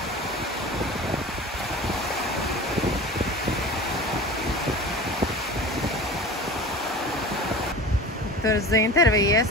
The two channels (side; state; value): both; normal; correlation 0.35